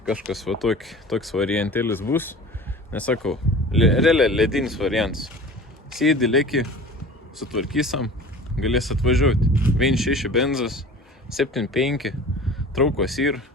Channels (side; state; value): both; normal; correlation 0.40